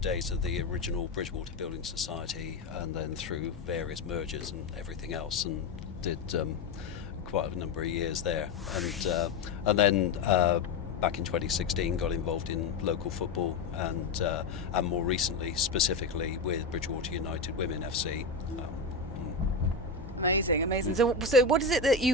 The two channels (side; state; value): right; quieter; 4.1 dB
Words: of the original Bridgwater Building Society, and then through various mergers and everything else, and did quite a number of years there, and then back in 2016 got involved in local football, and more recently specifically with Bridgwater United Women FC. Amazing. So what is it that